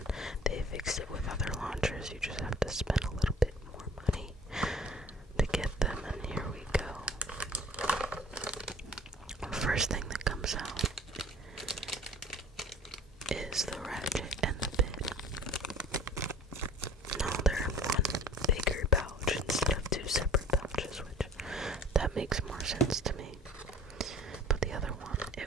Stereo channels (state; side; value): normal; both; correlation 0.47